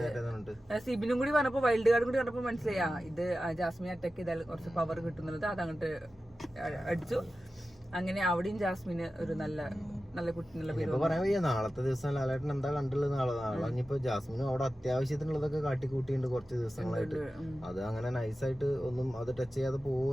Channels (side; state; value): both; normal; correlation 0.94